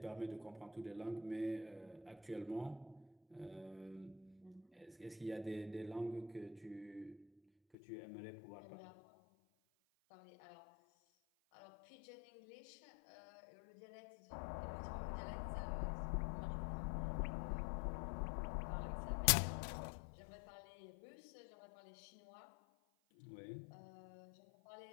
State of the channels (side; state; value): right; drops out; at 7.8 s